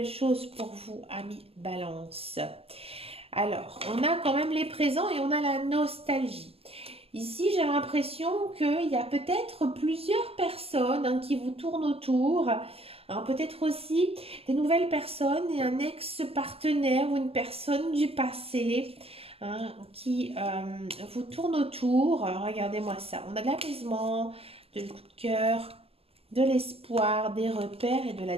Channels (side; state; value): left; late; 0.28 ms